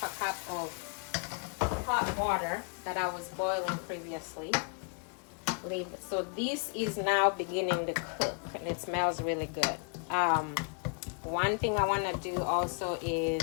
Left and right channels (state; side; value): quieter; right; 39.6 dB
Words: a cup of hot water that I was boiling previously. So this is now beginning to cook, and it smells really good. One thing I want to do also